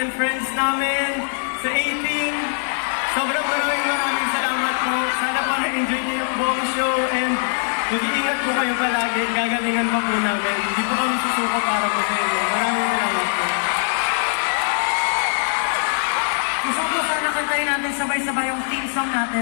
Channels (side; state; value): right; silent; 65 dB below the other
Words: friends namin, sa 18, sobrang maraming salamat po. Sana po na-enjoy niyo yung buong show and mag-iingat po kayo palagi. Gagalingan pa po namin. Hindi po kami susuko para po sa inyo. Maraming salamat po. Gusto ko sana kantayin natin sabay-sabay yung theme song